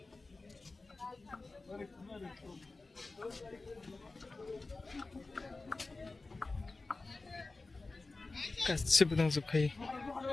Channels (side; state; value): right; quieter; 3.5 dB